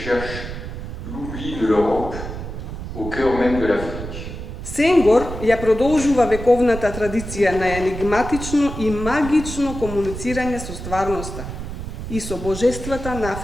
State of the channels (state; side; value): noise; right; rumble, 8 dB below the sound